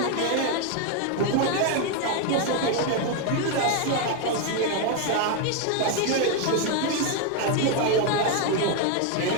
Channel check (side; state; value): both; different; correlation 0.01